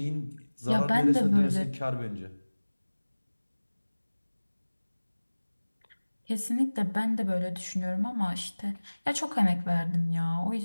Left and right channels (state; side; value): inverted; both; correlation -1.00